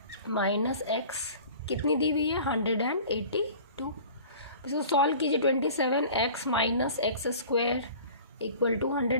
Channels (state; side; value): inverted; both; correlation -0.44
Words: माइनस x कितनी दी हुई है 182। इसको सॉल्व कीजिए, 27x minus x square equal to